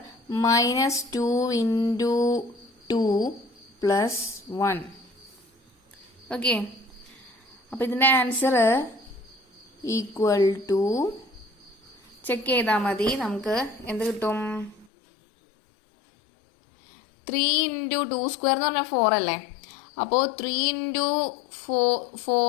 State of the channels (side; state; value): right; drops out; at 14.9 s